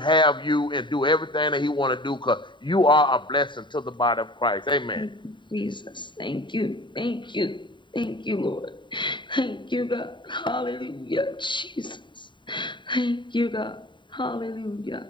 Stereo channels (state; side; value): late; right; 0.23 ms